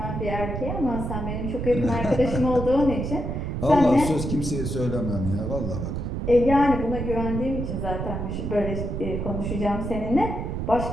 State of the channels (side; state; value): right; noise; rumble, 3 dB below the sound